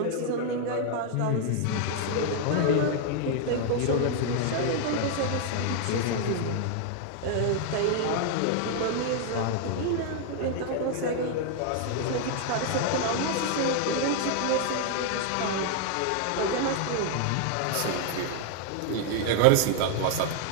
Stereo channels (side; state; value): both; different; correlation 0.00